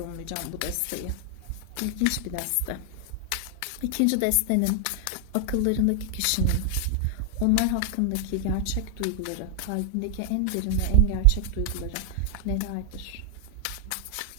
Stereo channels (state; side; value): different; both; correlation 0.00